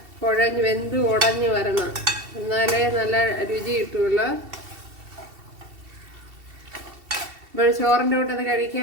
കുഴഞ്ഞ് വെന്ത് ഉടഞ്ഞു വരണം, എന്നാലേ നല്ല രുചി കിട്ടുള്ളൂ. ഇപ്പോൾ ചോറിൻ്റെ കൂട്ടത്തിൽ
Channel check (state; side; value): late; left; 2.7 ms